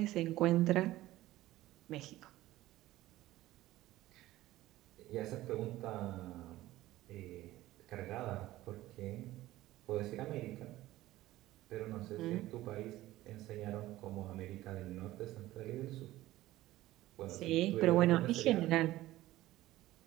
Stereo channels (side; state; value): left; quieter; 16.2 dB